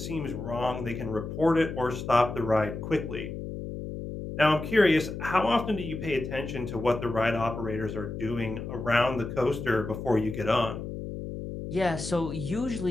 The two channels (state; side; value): noise; left; hum, 7 dB below the sound